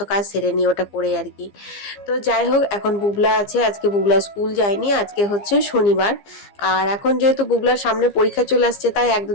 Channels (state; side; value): late; right; 15 ms